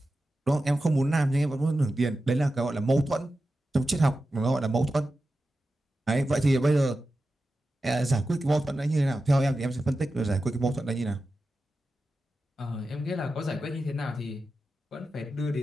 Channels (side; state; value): both; normal; correlation 0.92